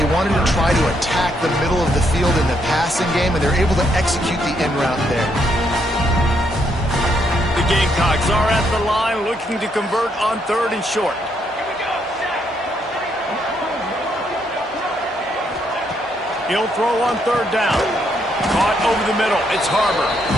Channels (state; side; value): normal; both; correlation 0.75